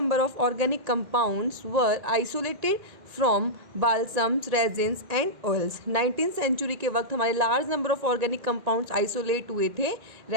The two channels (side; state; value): left; late; 1.9 ms